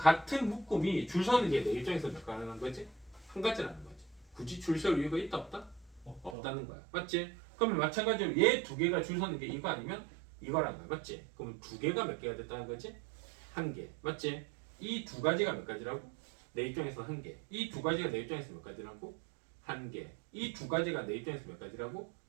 묶음이 줄 서는 게 내 입장에서 몇 가능한 거지? 한 가지라는 거지. 굳이 줄 설 이유가 있다 없다? 없다는 거야. 맞지? 그러면 마찬가지로 얘 두 개가 줄 서는 게 이거 아니면 이거라는 거야. 맞지? 그러면 두 개가 몇 개가 됐다는 거지? 한 개. 맞지? 이 두 가지가 몇 가지라고? 내 입장에서 한 개. 이 두 가지가 내 입장에서 몇 가지라고? 한 개. 이 두 가지가 내 입장에서 몇 가지라고?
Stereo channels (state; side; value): drops out; left; at 6.4 s